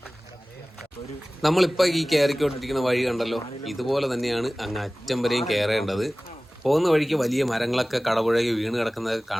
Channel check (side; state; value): both; normal; correlation 0.98